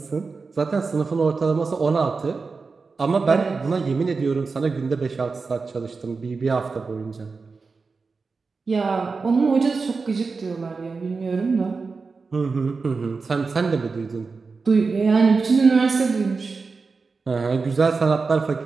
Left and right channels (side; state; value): left; quieter; 4.4 dB